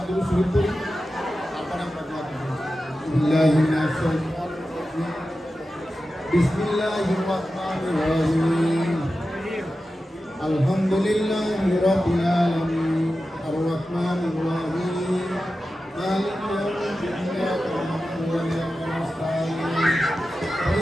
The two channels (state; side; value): normal; both; correlation 0.93